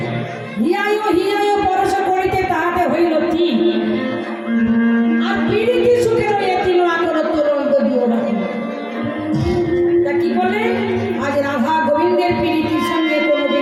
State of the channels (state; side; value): identical; both; correlation 1.00